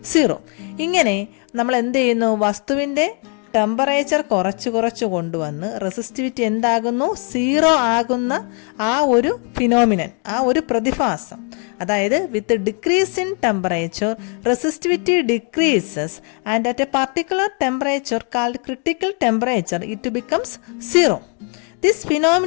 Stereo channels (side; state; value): right; quieter; 39.2 dB